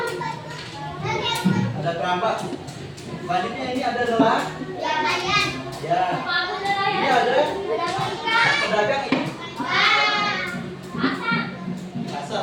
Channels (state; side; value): identical; both; correlation 1.00